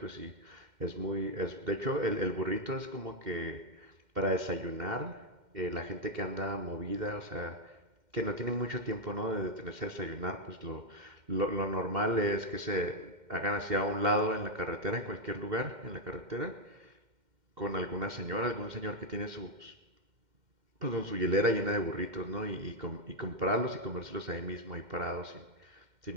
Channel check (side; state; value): left; late; 2.1 ms